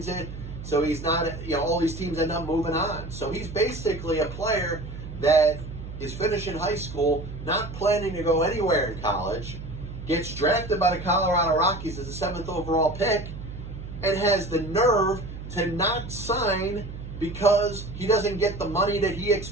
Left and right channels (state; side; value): noise; right; hum, 10 dB below the sound